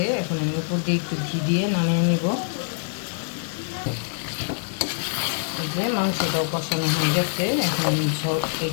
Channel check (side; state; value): right; silent; 62 dB below the other